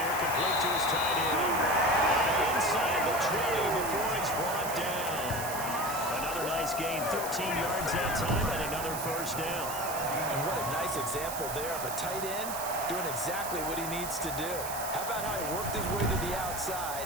complete to his tight end. Inside the 20 before he's brought down. Another nice gain, 13 yards that time, and another 1st down. And what a nice example there of a tight end doing exactly what he needs to do. How about how he worked his way to the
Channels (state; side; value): noise; right; hiss, 7 dB below the sound